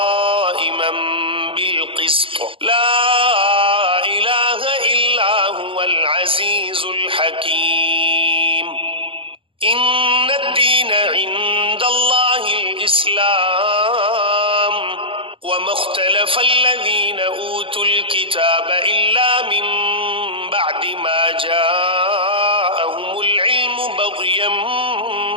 بالقسط لا إله إلا هو العزيز الحكيم إن الدين عند الله الإسلام وما اختلف الذين أوتوا الكتاب إلا من بعد ما جاءهم العلم بغيا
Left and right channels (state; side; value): late; left; 0.26 ms